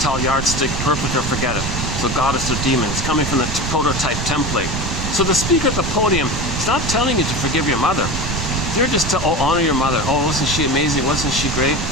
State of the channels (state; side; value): noise; right; rumble, 4 dB below the sound